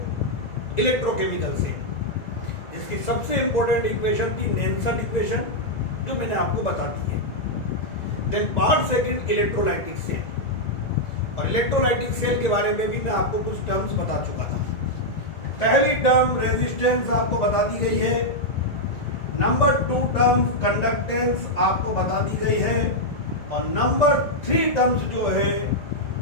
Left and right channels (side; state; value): right; late; 2.0 ms